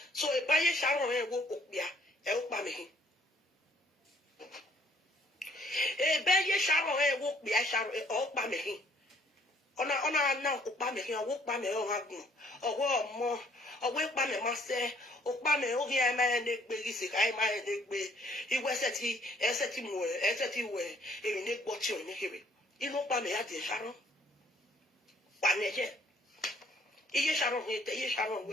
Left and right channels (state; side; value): normal; both; correlation 0.63